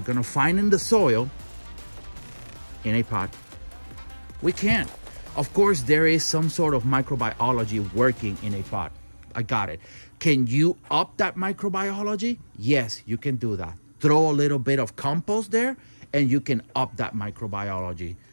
gonna find in the soil in a pot. We can't. Of course, there is some sort of microbiology working in a pot. I got it. Can you up that microbiology? Yes, you can do that. Throw a little bit of compost there and you can up that microbiology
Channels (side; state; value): both; inverted; correlation -1.00